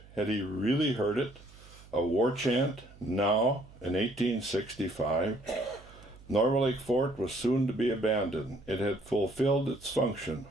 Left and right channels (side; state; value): right; noise; hum, 22 dB below the sound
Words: Had he really heard it? A war chant, now, in 1865? Norway Lake Fort was soon to be abandoned. It had fulfilled its function.